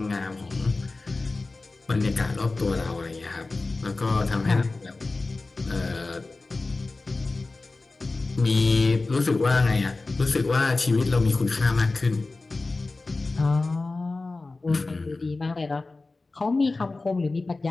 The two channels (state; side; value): quieter; right; 3.4 dB